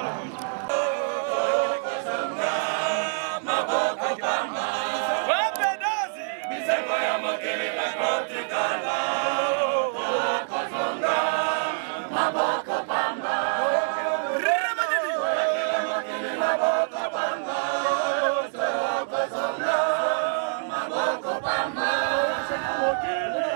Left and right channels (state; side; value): silent; left; digital silence